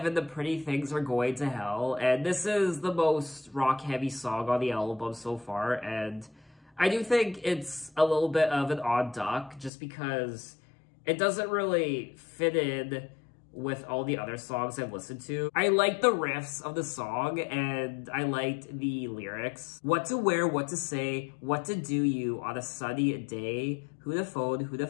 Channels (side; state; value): right; drops out; at 9.7 s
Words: The Pretty Things Are Going to Hell, and this is the most rock-heavy song on the album so far, and I do think it's a little bit of an odd duck, just because it doesn't really fit in with all the other songs I've listened to. I like the riffs of the song, and I liked the lyrics. What to wear, what to say, what to do you on a sunny day, who to phone, who to